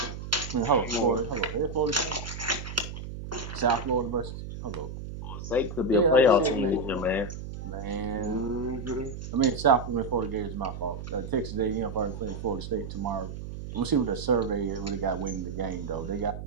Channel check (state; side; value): noise; right; hum, 8 dB below the sound